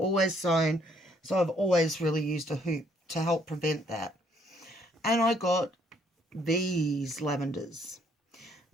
sewn, so I've always really used a hoop to help prevent that. And I got these lavenders.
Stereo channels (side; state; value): both; normal; correlation 0.67